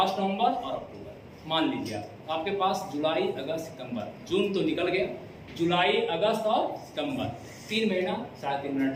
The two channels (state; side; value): identical; both; correlation 1.00